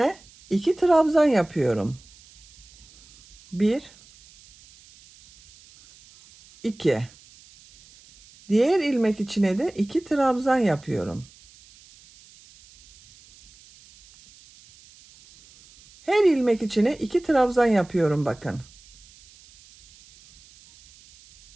2 trabzan yapıyorum. 1 2. Diğer ilmek içine de 2 trabzan yapıyorum. Her ilmek içine 2 trabzan yapıyorum bakın.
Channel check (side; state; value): right; noise; hiss, 26 dB below the sound